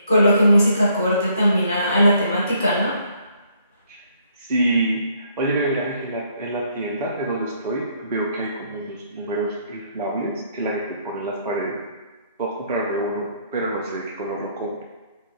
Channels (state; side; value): inverted; both; correlation -0.67